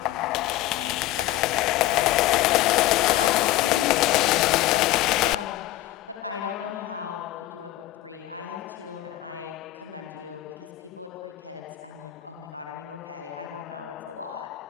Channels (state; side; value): quieter; right; 15.4 dB